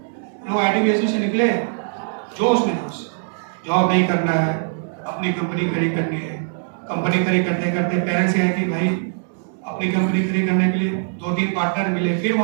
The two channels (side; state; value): left; silent; digital silence